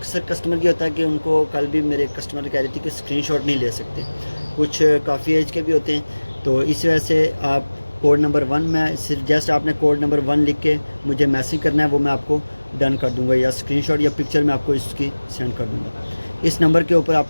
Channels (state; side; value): inverted; both; correlation -1.00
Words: कस्टमर की होता है कि उनको, कल भी मेरे कस्टमर कह रही थी कि स्क्रीनशॉट नहीं ले सकते, कुछ काफ़ी एज के भी होते हैं, तो इस वजह से आप कोड नंबर 1 में सिर्फ जस्ट आपने कोड नंबर 1 लिख के मुझे मैसेज करना है, वो मैं आपको डन कर दूंगा, या स्क्रीनशॉट या पिक्चर मैं आपको इसकी सेंड कर दूंगा। इस नंबर के ऊपर